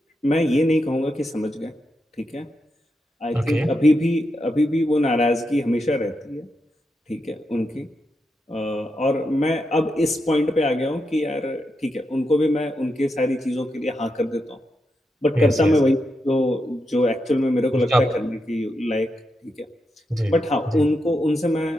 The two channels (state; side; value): normal; both; correlation 0.85